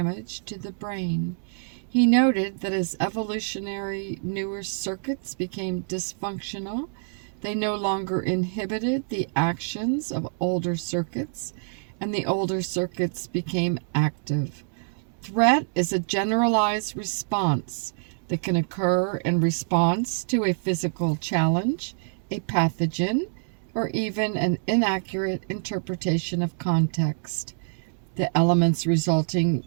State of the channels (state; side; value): silent; left; digital silence